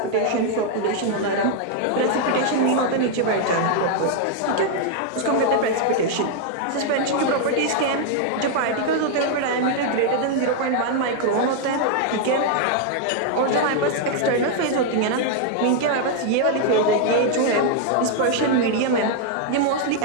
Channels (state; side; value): different; both; correlation 0.00